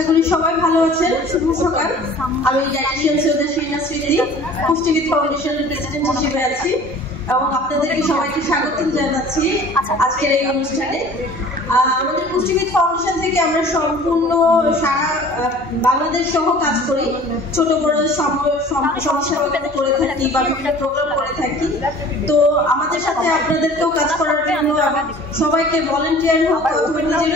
করি সবাই ভালো আছেন। শুভ সকাল। আমি ডায়েটিশিয়ান সৈয়দা শিরিনা স্মৃতি, পুষ্টিবিদ ফাউন্ডেশনের প্রেসিডেন্ট হিসেবে আছি এবং আপনাদেরকে সবাইকে স্বাগত জানাচ্ছি আজকের এই অনুষ্ঠানে। আমাদের পুষ্টিবিদ ফাউন্ডেশন থেকে আমরা সম্পূর্ণ সারা বাংলাদেশ সহ কাজ করি। ছোট বড় সমস্যা করে থাকি বা বিভিন্ন প্রোগ্রাম করে থাকি। তো আমাদের সাথে আপনাদেরকেও কাজ করার জন্য সবাইকে ভলান্টিয়ার হোক অথবা নিজের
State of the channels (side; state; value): both; normal; correlation 0.46